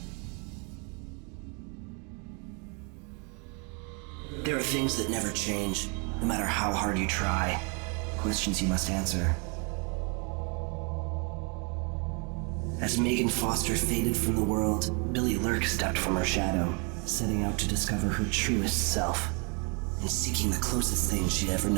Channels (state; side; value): quieter; left; 34.4 dB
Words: There are things that never change, no matter how hard you try. Questions you must answer. As Megan Foster faded from the world, Billy Lurk stepped from her shadow, setting out to discover her truest self, and seeking the closest thing she'd ever